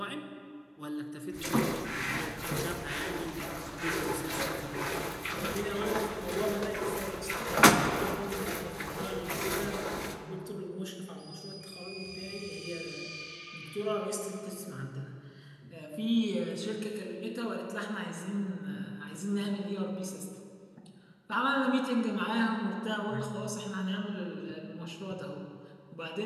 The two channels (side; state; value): both; identical; correlation 1.00